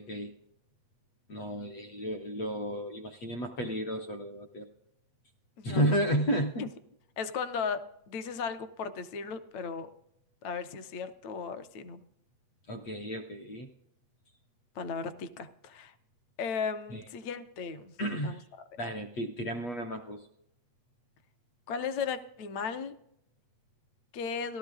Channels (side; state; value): right; late; 8.3 ms